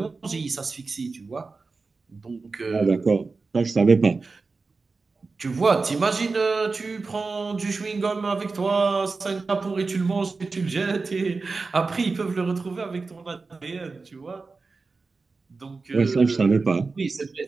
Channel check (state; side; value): quieter; left; 4.1 dB